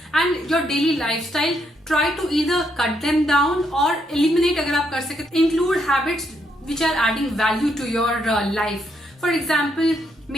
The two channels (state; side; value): normal; both; correlation 0.76